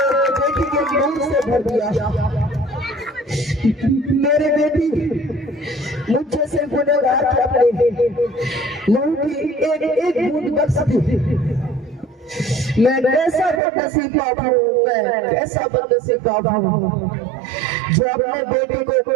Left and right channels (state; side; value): drops out; left; at 13.6 s